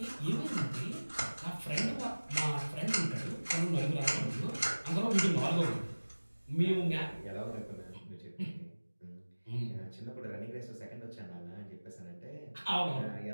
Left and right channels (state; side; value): inverted; both; correlation -1.00